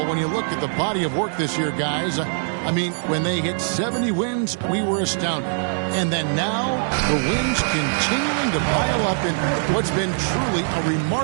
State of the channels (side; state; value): left; silent; digital silence